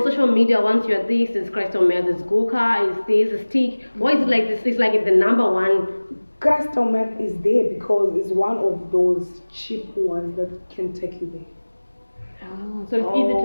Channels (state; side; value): inverted; both; correlation -1.00